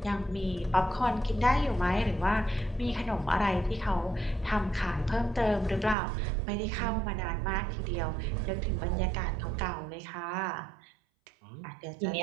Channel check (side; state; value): left; drops out; at 6.0 s